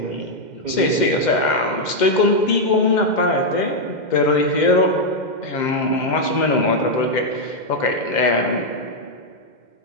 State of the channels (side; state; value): right; late; 2.1 ms